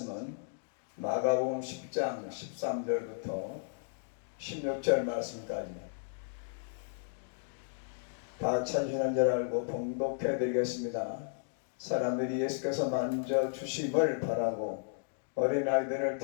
마가복음 10장 13절부터 16절 말씀까지입니다. 다 찾으시는 줄 알고 봉독해 드리겠습니다. 사람들이 예수께서 만져 주심을 바라고 어린아이들을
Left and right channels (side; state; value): right; silent; digital silence